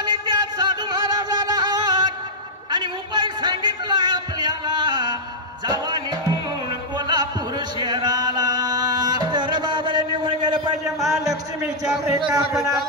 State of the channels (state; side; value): normal; both; correlation -0.08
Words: त्या साधू महाराजाला आणि उपाय सांगितला आपल्याला. जावा निघून कोल्हापूर शहराला. तर बाबाने निघून गेलं पाहिजे महालक्ष्मीच्या कथा